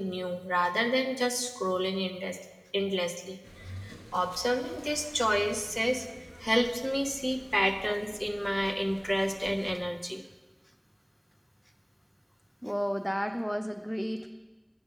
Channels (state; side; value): identical; both; correlation 1.00